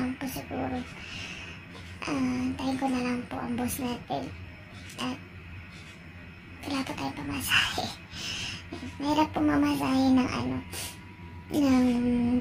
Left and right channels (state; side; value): identical; both; correlation 1.00